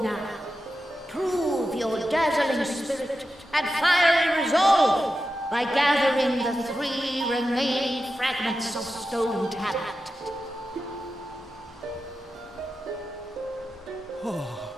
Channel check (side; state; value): both; normal; correlation 0.91